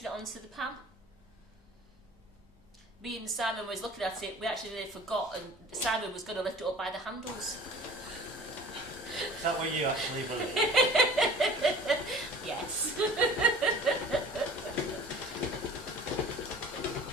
it onto the pan. Me and Simon was looking at it. We actually nearly forgot, and Simon was going to lift it up by the handles. Is that what you actually believe? Yes.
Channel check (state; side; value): normal; both; correlation 0.44